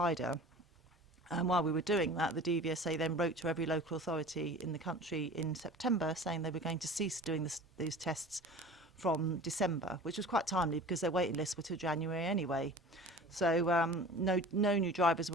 And while we were doing that, the DVSA then wrote to every local authority in the country in September saying they were going to cease doing these tests from December, which was quite timely because their waiting lists were till January anyway. So no new drivers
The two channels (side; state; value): both; normal; correlation 0.40